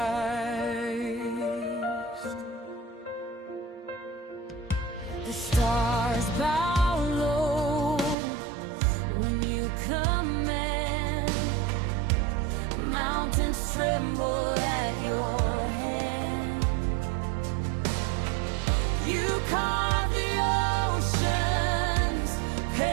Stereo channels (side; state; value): left; drops out; at 8.2 s